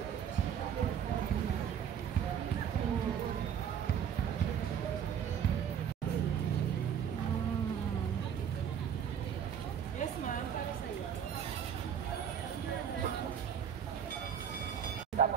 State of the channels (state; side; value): quieter; left; 8.4 dB